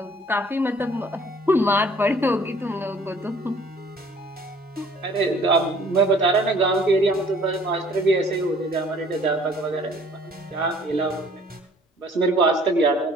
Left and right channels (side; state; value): both; normal; correlation 0.55